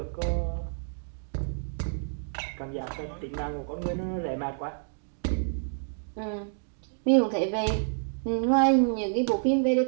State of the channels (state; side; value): silent; left; digital silence